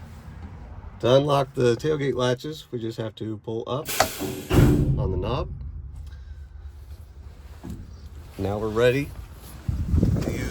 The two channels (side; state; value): both; identical; correlation 1.00